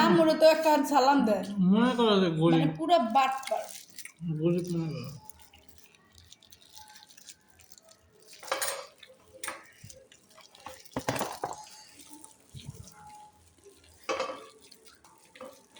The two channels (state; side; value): identical; both; correlation 1.00